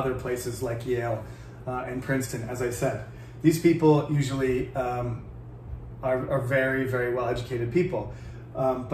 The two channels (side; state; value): both; identical; correlation 1.00